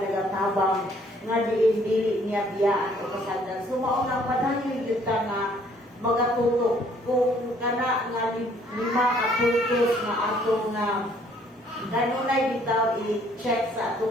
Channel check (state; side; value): normal; both; correlation 0.62